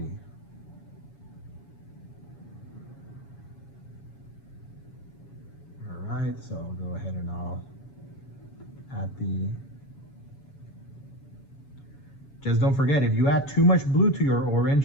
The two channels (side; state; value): right; late; 7.1 ms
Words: right, so I'll go ahead and I'll add the, just don't forget, if you add too much blue to your